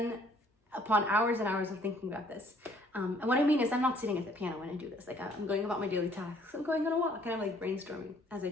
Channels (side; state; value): both; normal; correlation 0.60